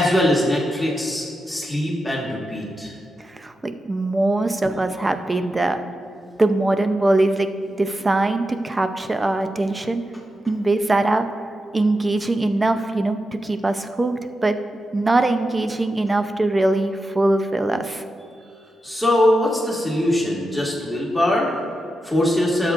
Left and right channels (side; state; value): both; normal; correlation 0.89